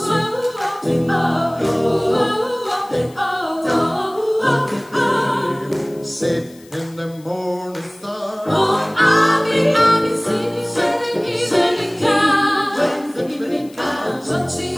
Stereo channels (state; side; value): noise; left; hiss, 26 dB below the sound